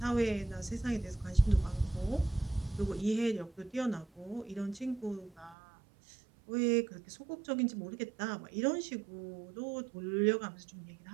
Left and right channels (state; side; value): drops out; left; at 5.6 s